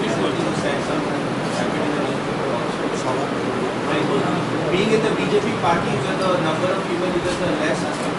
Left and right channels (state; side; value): identical; both; correlation 1.00